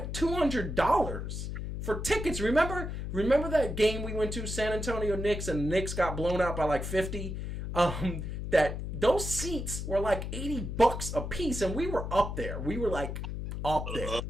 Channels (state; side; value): noise; left; hum, 5 dB below the sound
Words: $200 for tickets. Remember that game we went to, San Antonio Knicks, and the Knicks got blown out by like 50? That those seats were like $80 a piece, and we were up there. We were like up there.